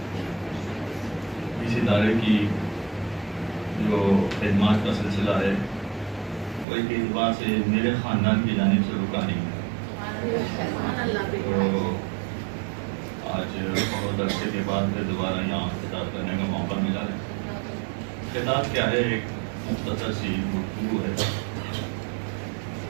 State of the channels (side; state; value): left; drops out; at 6.7 s